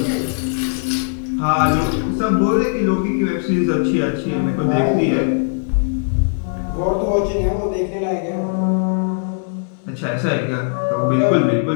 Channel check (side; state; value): right; silent; digital silence